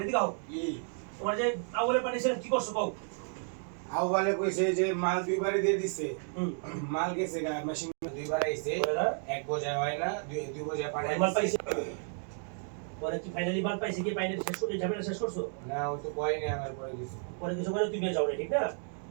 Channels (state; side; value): silent; left; 56 dB below the other